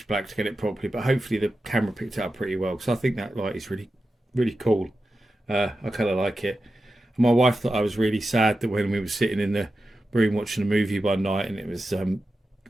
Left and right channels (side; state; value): both; normal; correlation 0.92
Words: black to get it properly, but hopefully the camera picked it up pretty well, because I think that light is really, really cool. I kind of like it. And my wife thought I was really sad that when we were sitting in the room watching a movie one night and it was